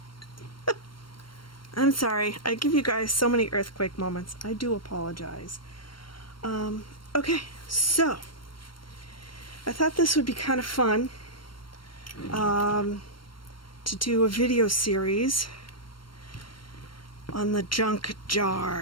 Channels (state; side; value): late; right; 0.72 ms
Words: I'm sorry. I give you guys so many earthquake moments. I do apologize. Okay, so I thought this would be kind of fun to do a video series on the junk